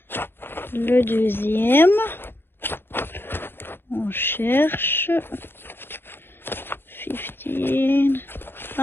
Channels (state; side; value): late; right; 0.10 ms